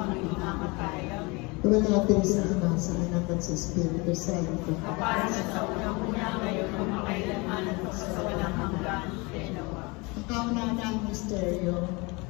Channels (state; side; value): quieter; right; 26.9 dB